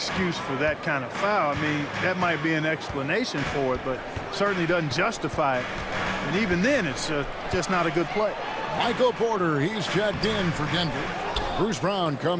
for that kind of foul. I mean, that might be an explanation for it, but certainly doesn't justify it. And even then, it's just not a good play. Michael Porter, he's checked in for Denver. Bruce Brown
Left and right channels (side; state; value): both; identical; correlation 1.00